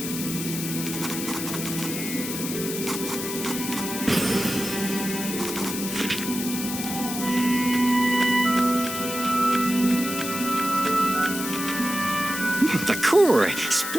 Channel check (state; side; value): noise; left; hiss, 6 dB below the sound